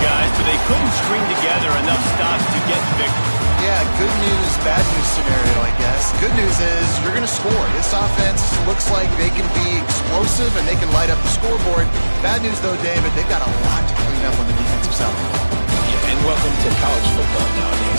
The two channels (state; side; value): inverted; both; correlation -1.00